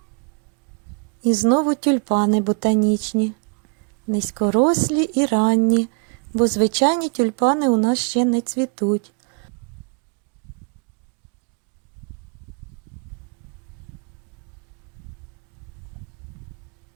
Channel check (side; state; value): left; quieter; 35.2 dB